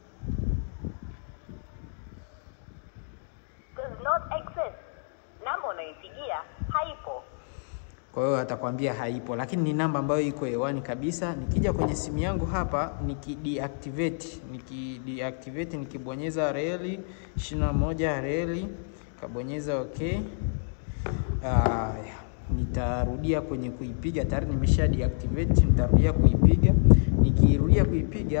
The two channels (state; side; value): silent; right; digital silence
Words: does not exist. Namba unaipigia haipo. Kwa hiyo atakwambia haipo, lakini ni namba ambayo iko hewani kabisa. Nikija kwenye simu yangu hapa nikideactivate, nikibonyeza reli 21 reli, kabonyeza okay. Nitarudia kwenye kuipiga, tayari nimesha deactivate. Nitarudia kuipiga. Nikirudia